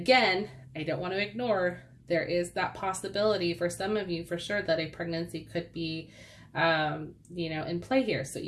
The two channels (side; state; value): both; identical; correlation 1.00